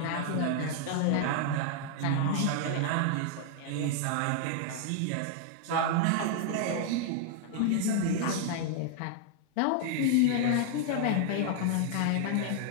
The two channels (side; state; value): both; different; correlation 0.00